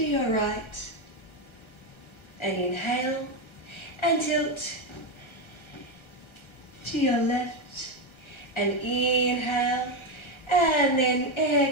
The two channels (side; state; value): right; late; 1.3 ms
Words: your right. And inhale and tilt to your left. And inhale and then